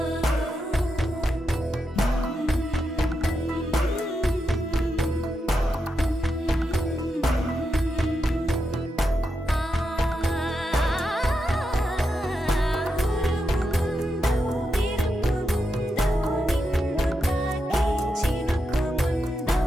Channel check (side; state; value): both; normal; correlation 0.86